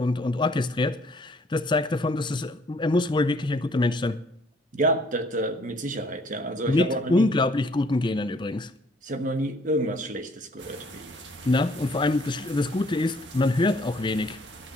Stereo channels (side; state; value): both; normal; correlation 0.61